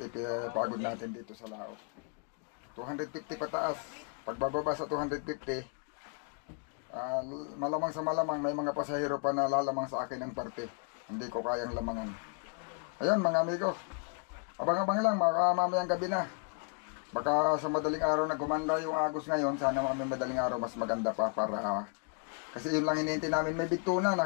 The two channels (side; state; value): right; quieter; 34.2 dB